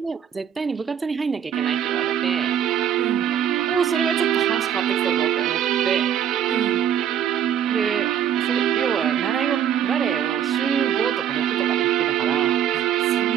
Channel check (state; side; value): quieter; left; 9.4 dB